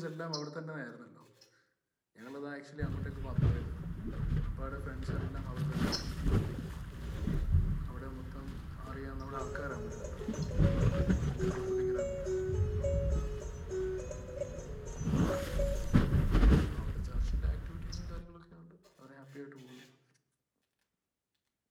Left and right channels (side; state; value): both; identical; correlation 1.00